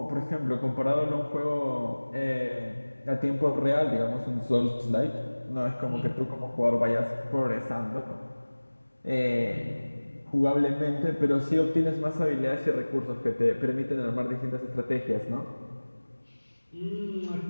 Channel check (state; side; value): inverted; both; correlation -1.00